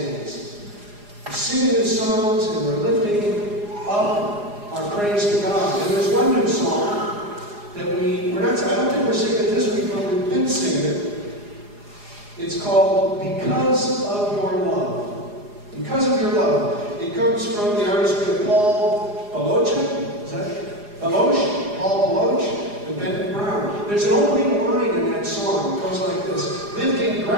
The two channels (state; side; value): late; left; 4.8 ms